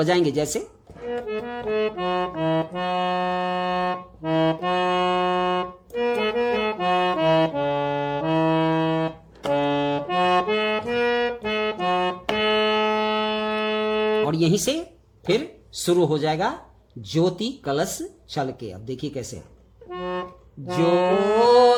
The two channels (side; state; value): both; identical; correlation 1.00